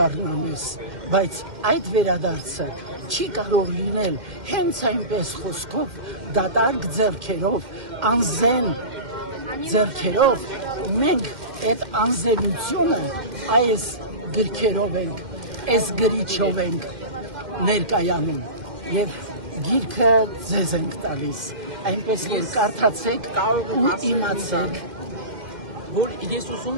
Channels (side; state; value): left; late; 2.1 ms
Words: բայց այդ վերադարձը չի կարող լինել հենց այնպես խոսքով, դատարկ ձեռքերով, անզեն ձեռքերով, մենք այդ անզենությունը այս գրքերով ենք, այս գրիչով ենք ներկայանում և գիրքը ձեզ ենք տալիս, այնպես որ կարդացեք ու իմացեք, որ ես